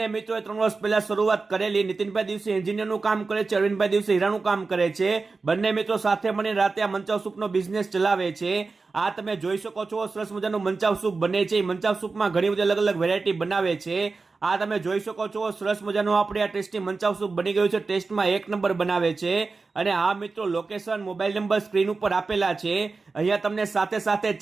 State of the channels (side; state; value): left; quieter; 4.1 dB